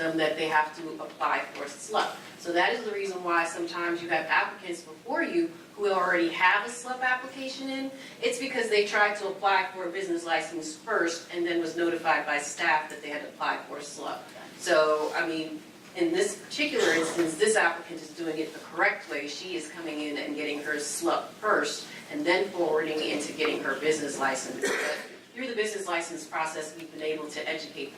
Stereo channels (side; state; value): both; identical; correlation 1.00